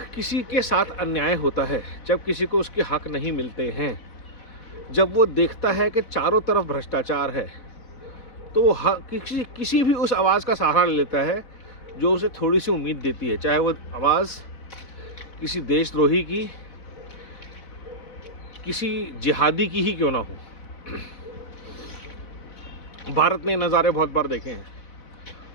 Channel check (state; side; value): late; right; 4.1 ms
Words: किसी के साथ अन्याय होता है, जब किसी को उसके हक नहीं मिलते हैं, जब वो देखता है कि चारों तरफ भ्रष्टाचार है, तो वो किसी भी उस आवाज़ का सहारा ले लेता है जो उसे थोड़ी सी उम्मीद देती है, चाहे वो आवाज़ किसी देशद्रोही की, किसी जिहादी की ही क्यों ना हो। भारत ने नज़ारे बहुत बार देखे हैं।